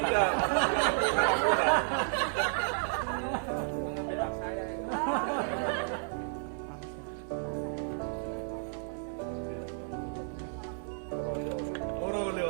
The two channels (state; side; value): silent; left; 56 dB below the other